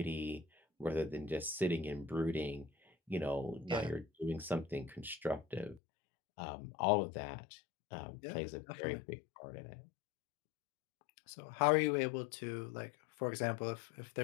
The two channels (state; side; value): drops out; right; at 5.8 s